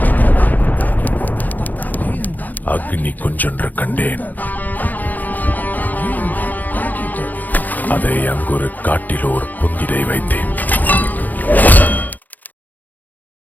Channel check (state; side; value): late; right; 0.083 ms